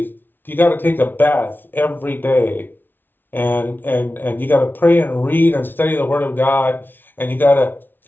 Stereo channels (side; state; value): right; late; 0.095 ms